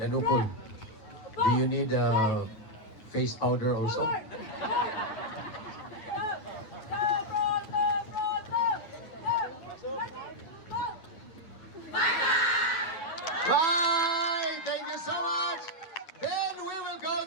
Upol, do you need face powder also? Forward! Right! Left! Left, right, left, right, left! Left! Ready! Go! Right! Thank you so much! Then we will go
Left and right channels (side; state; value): right; late; 9.1 ms